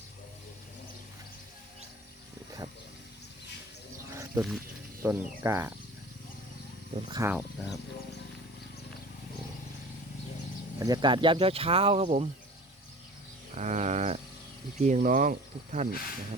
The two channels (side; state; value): both; normal; correlation 0.41